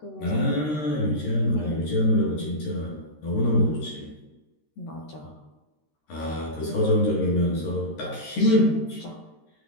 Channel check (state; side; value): late; right; 13 ms